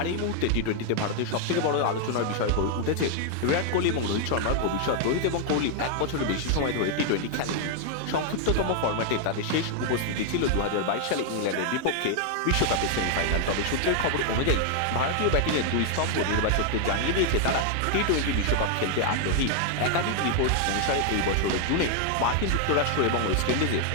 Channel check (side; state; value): both; different; correlation 0.00